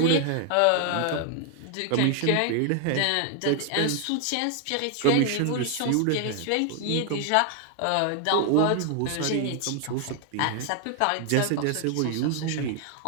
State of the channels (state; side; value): different; both; correlation 0.00